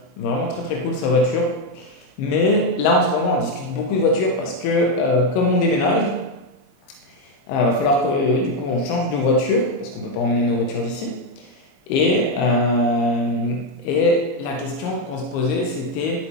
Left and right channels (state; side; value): late; right; 22 ms